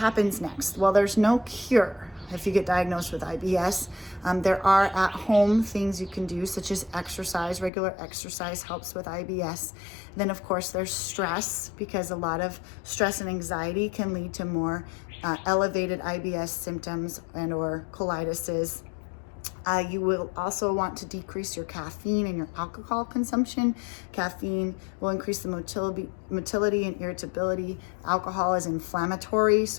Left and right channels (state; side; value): drops out; right; at 7.7 s